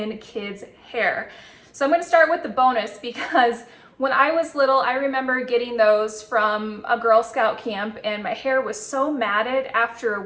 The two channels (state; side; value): identical; both; correlation 1.00